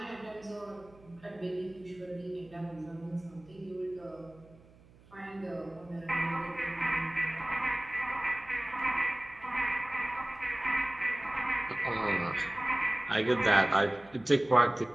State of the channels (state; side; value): noise; right; hum, 25 dB below the sound